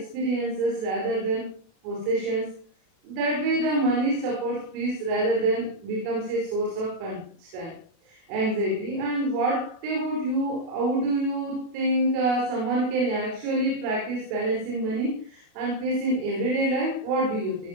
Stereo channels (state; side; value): late; left; 37 ms